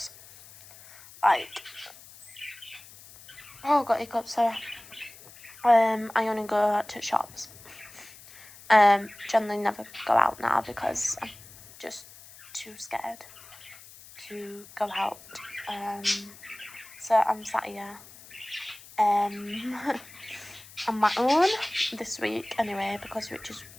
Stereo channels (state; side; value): noise; left; hiss, 20 dB below the sound